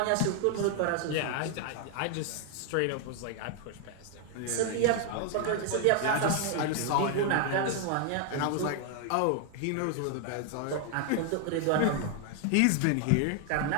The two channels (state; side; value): different; both; correlation 0.00